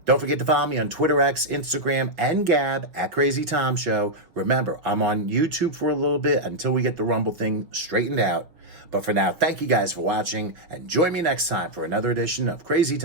Don't forget to follow me on Twitter, X, Instagram, and Gab at Crazy Tom Show. Remember, I'm on YouTube for a little bit until we get the Rumble thing straightened out. But for now, thank you guys for watching, and join me next time for another edition of Crazy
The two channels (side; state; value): left; late; 5.9 ms